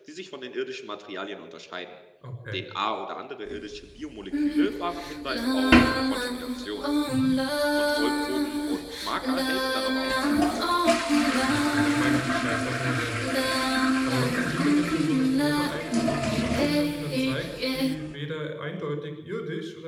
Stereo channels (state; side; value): identical; both; correlation 1.00